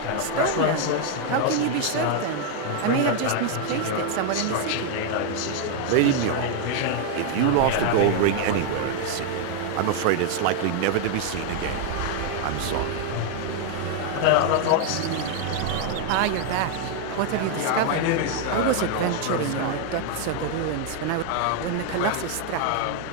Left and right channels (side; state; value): both; different; correlation 0.00